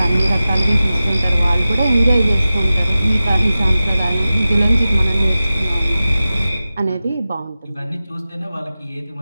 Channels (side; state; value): both; inverted; correlation -0.95